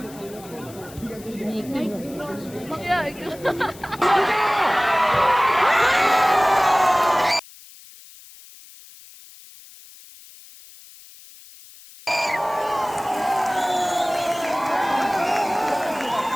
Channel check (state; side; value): noise; left; hiss, 20 dB below the sound